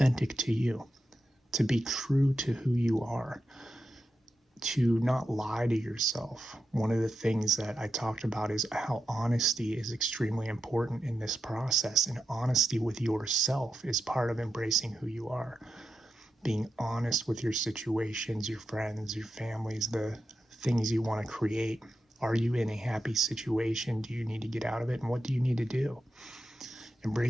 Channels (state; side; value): normal; both; correlation 0.88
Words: to you, to be true to who you are, to not lie to yourself. One of the things that I talked about is how honesty is extremely important in this process, and honesty with yourself is part of embracing who you are. Being honest with your situations, your friends, your families, the things you want to create. Are you in a happy situation? Do you need to get out of it? And what do you need to do?